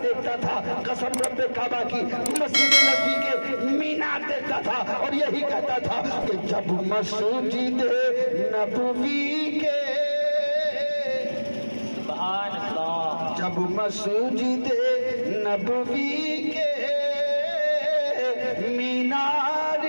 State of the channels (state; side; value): inverted; both; correlation -1.00